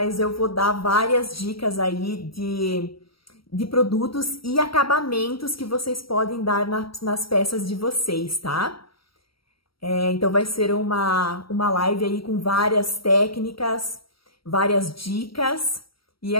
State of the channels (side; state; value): right; late; 0.75 ms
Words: eu vou dar várias dicas aí de produtos e acabamentos que vocês podem dar nas peças de vocês, tá? Então vai ser uma live aí com várias técnicas, várias dicas e